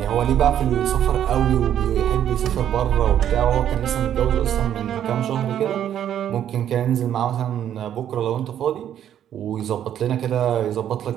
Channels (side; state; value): left; quieter; 10.3 dB